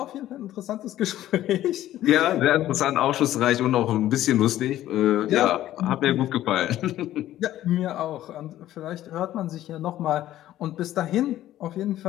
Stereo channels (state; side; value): quieter; right; 13.5 dB